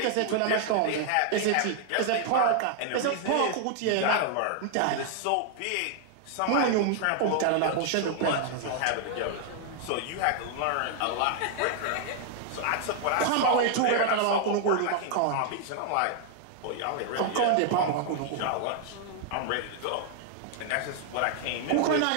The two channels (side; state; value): both; different; correlation 0.00